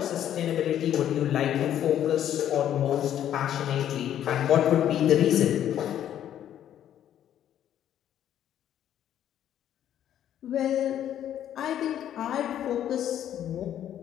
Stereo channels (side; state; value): right; quieter; 10.8 dB